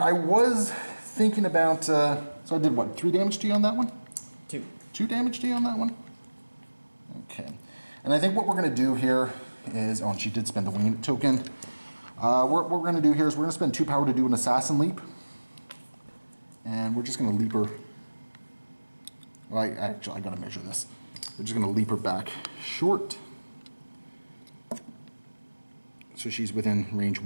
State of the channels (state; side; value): inverted; both; correlation -1.00